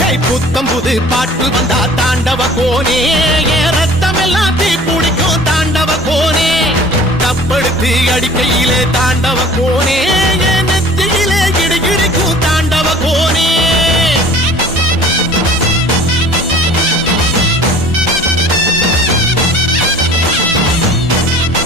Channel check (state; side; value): normal; both; correlation 0.47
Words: புத்தம் புது பாட்டு வந்தா தாண்டவ கோனே, ரத்தம் எல்லாம் தீ பிடிக்கும் தாண்டவ கோனே. தப்படுத்து அடிக்கையிலே தாண்டவ கோனே, நெத்தியிலே இடி இடிக்கும் தாண்டவ கோனே.